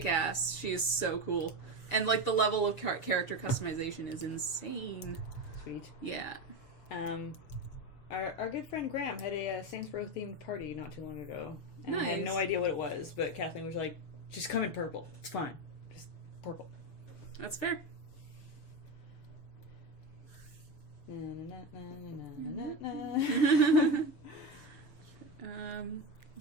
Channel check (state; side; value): late; right; 6.9 ms